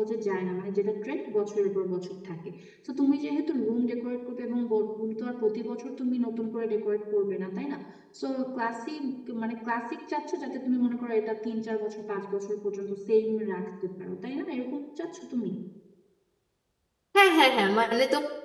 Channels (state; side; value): identical; both; correlation 1.00